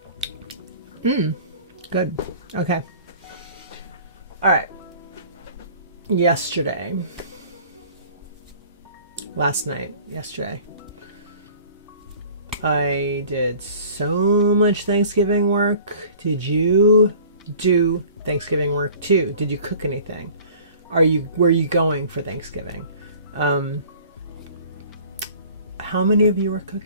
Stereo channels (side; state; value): both; inverted; correlation -0.48